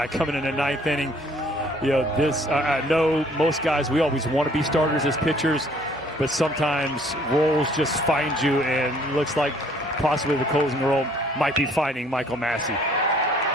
coming in the 9th inning, you know, this, I know most guys, we always want to be starters as pitchers, but sometimes roles just find you, and it looks like possibly the closing role might be finding Michael Massey.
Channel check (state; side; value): normal; both; correlation 0.60